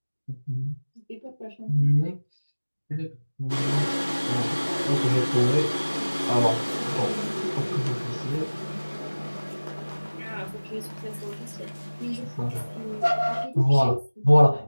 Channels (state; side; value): inverted; both; correlation -1.00